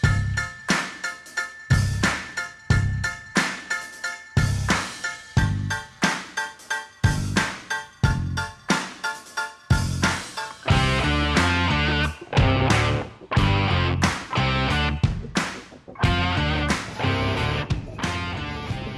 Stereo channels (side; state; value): both; identical; correlation 1.00